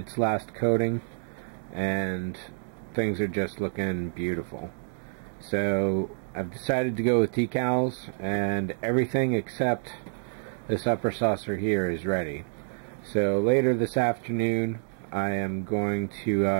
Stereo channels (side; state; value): left; silent; digital silence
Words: last coating, and things are just looking beautiful. So I've decided to go with decals, and everything except this upper saucer here is ready. So later this afternoon I am going to,